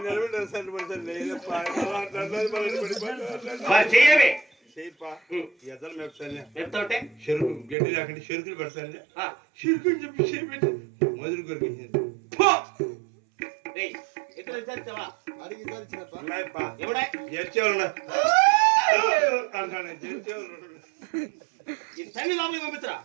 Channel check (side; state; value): left; drops out; at 7.8 s